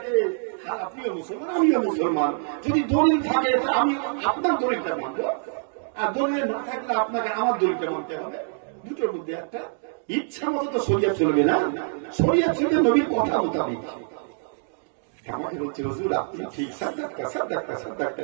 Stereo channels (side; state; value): left; silent; digital silence